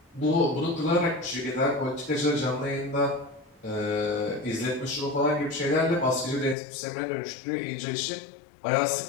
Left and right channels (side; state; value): right; drops out; at 6.6 s